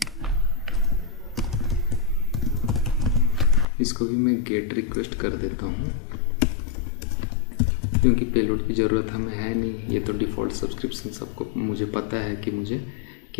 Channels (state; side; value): drops out; right; at 3.7 s